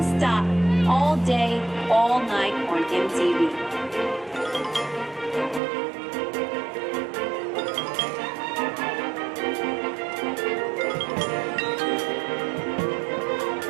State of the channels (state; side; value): drops out; left; at 5.6 s